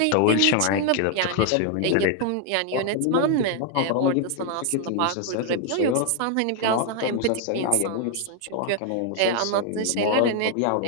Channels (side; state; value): both; different; correlation 0.00